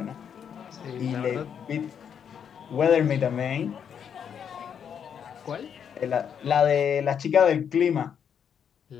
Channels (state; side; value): quieter; right; 7.9 dB